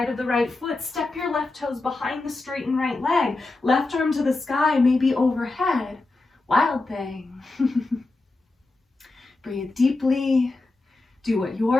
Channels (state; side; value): quieter; right; 3.2 dB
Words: of the right foot. Step your left toes behind the straightened right leg. Left arm to the sky, maybe overhead. Wild thing. Breathe deeply. Do what